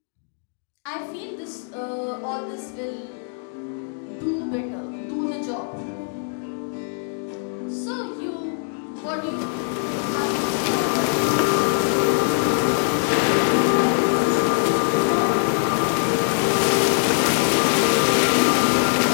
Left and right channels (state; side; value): silent; right; 64 dB below the other